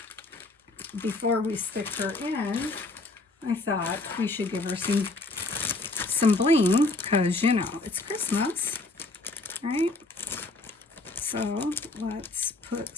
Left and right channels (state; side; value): quieter; right; 3.1 dB